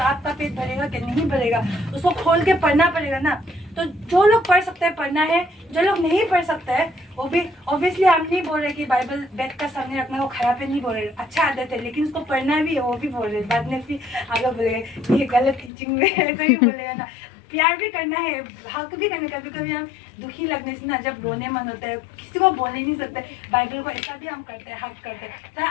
आपका पेट भरेगा कि नहीं भरेगा? उसको खोल के पढ़ना पड़ेगा ना। तो जो लोग पढ़ सकते हैं पढ़ना है, जो लोग नहीं पढ़ सकते हैं वो भी, ऑब्वियसली हम नहीं बोल रहे कि बाइबल बेड का सामने रखना वो खराब है, नहीं बोल रहे, अच्छा आदत है, लेकिन उसको पढ़ना भी है वो भी बोल रहे। बाद में फिर आगे बोलेगा ये गलत टीचिंग में ऐसा ही बोलेगा ना। प्यार भी करना है, हक भी करना। कभी कभी हम दुखी लगने से ना, जब रोने मन होता है, किसी को बोल ही नहीं सकते, बाइबल को ऐसा भी हम करते हैं, हक करते हैं, तो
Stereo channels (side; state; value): right; drops out; at 15.7 s